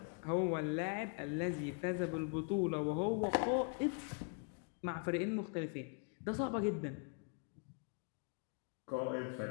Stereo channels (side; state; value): right; quieter; 38.2 dB